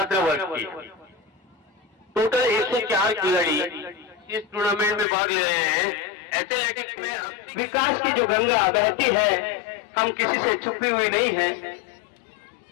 वर्ग की टोटल 104 खिलाड़ी इस टूर्नामेंट में भाग ले रहे हैं। एथलेटिक्स में विकास की जो गंगा बहती है हम किसी से छुपी हुई नहीं है।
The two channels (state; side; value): drops out; right; at 5.1 s